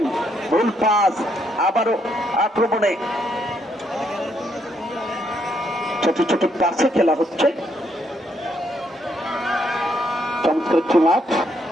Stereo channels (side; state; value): both; normal; correlation 0.74